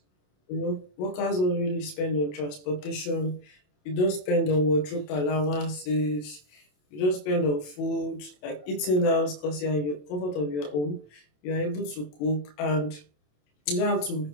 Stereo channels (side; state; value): right; late; 27 ms